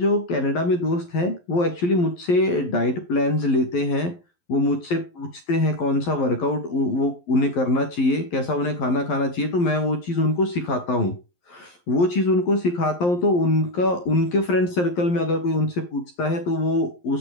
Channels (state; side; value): late; right; 11 ms